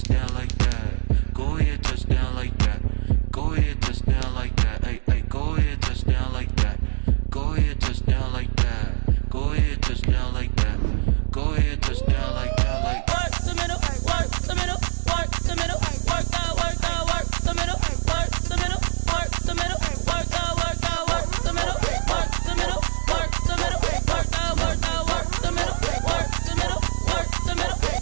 touchdown like that. Go ahead, touchdown like that. Go ahead, touchdown like that. Hey, hey, go ahead, touchdown like that. Go ahead, touchdown like that. Go ahead, touchdown like that. Go ahead, touchdown like that. Like work the middle, work the middle, work the middle, work the middle, work the middle, work the middle, work the middle, work the middle, work the middle, work the middle, work the middle, work the middle, work the middle,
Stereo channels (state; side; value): silent; left; digital silence